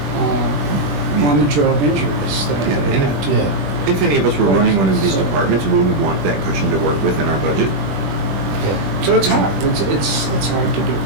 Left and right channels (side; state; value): left; late; 20 ms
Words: on-the-job injuries that Yeah, they and had to? Yeah, If any of us were running one of these departments, we would want that cushion to work with in our budget. yeah. So it's hard, it's hard to do.